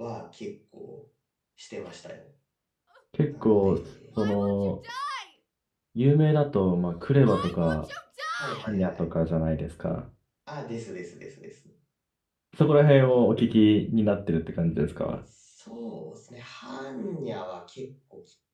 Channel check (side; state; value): both; identical; correlation 1.00